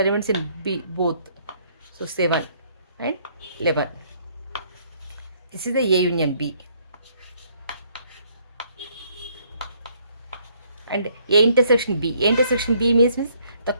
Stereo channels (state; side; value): inverted; both; correlation -0.66